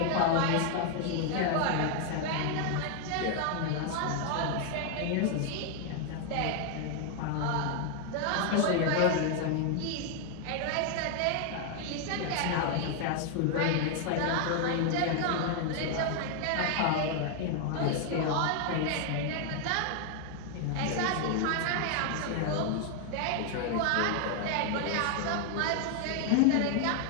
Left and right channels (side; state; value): both; different; correlation 0.00